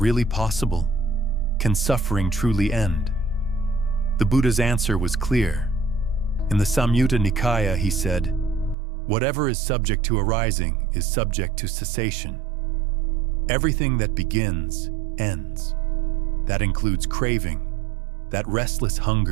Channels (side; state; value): left; drops out; at 8.8 s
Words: possible? Can suffering truly end? The Buddha's answer was clear. In the Samyutta Nikaya, he said, "Whatever is subject to arising is subject to cessation. Everything that begins, ends. That includes craving, that restless